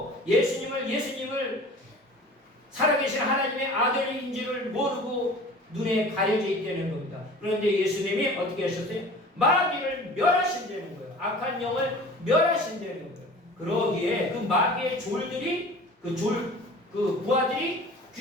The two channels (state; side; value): normal; both; correlation 0.42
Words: 예수님을 살아계신 하나님의 아들인 줄을 모르고 눈에 가려져 있다는 겁니다. 그런데 예수님이 어떻게 하셨어요? 마귀를 멸하신다는 거예요. 악한 영을 멸하신다는 거예요. 그러기에 그 마귀의 졸들이 그 부하들이